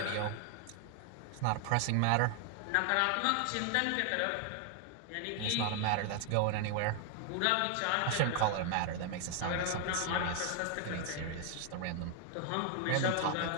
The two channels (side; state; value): both; different; correlation 0.00